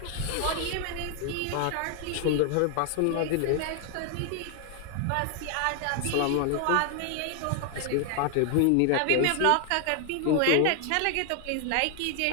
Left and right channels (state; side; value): different; both; correlation 0.00